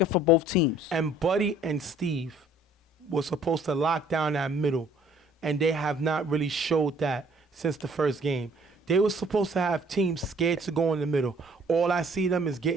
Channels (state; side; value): normal; both; correlation 0.57